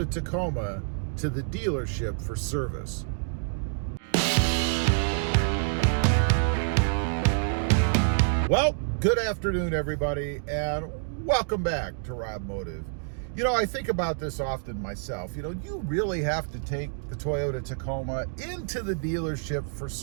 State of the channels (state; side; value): silent; left; digital silence